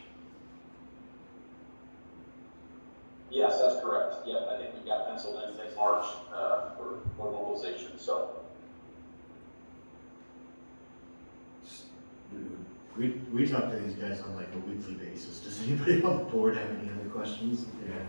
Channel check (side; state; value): both; inverted; correlation -1.00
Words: Yes, that's correct. Yep, I think we've got penciled in next March for mobilization. So We talk to these guys on like a weekly basis. Does anybody on the board have any other questions? Yeah.